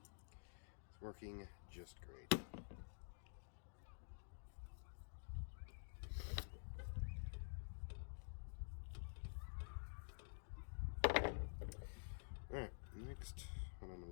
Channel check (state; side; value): silent; right; digital silence